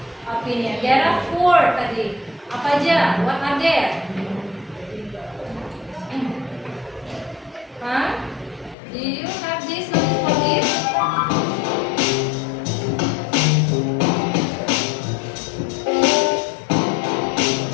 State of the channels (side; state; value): right; drops out; at 8.8 s